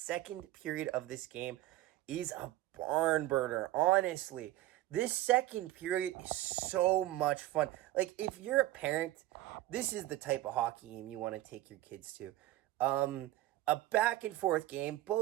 period of this game is a barn burner, honestly. This second period is so much fun. Like, if you're a parent, this is the type of hockey game you want to take your kids to. A back and forth game,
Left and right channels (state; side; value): quieter; left; 15.8 dB